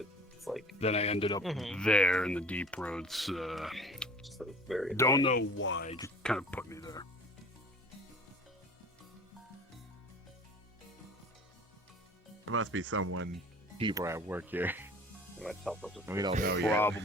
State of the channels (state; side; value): normal; both; correlation 0.46